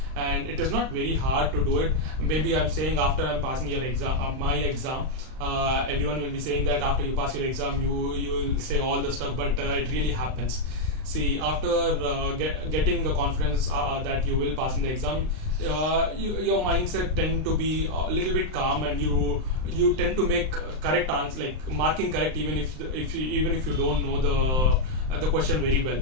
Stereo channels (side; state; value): left; late; 39 ms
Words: And it is not very hard to do it. Maybe I'm saying after I'm passing your exam, my exam, everyone will be saying that after you pass your exam, you will say all the stuff, but it really happens. See, after getting the confidence that you will pass in the exam, your mindset tend to be a little bit calm, and you tend to make correct answers, like marking correct, even if you don't know the question very well.